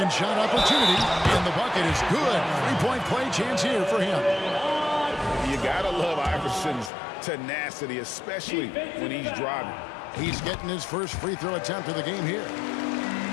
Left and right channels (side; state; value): right; drops out; at 6.9 s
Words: shot opportunity, and the bucket is good. Three-point play chance here for him. You gotta love Iverson's tenacity, especially when he's driving. He's getting his first free throw attempt of the game here.